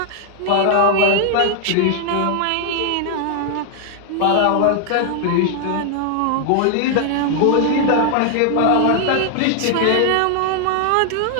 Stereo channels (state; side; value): different; both; correlation 0.00